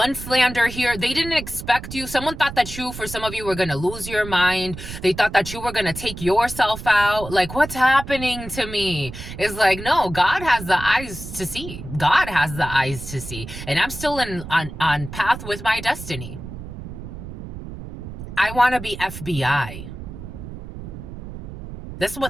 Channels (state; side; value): noise; right; rumble, 11 dB below the sound